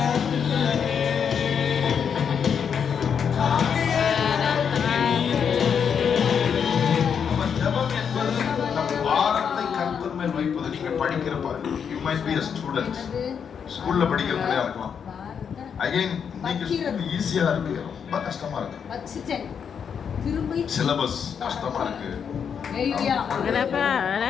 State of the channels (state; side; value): quieter; right; 7.2 dB